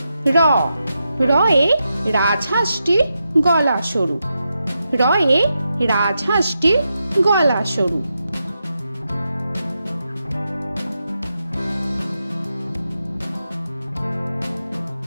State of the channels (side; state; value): both; inverted; correlation -0.87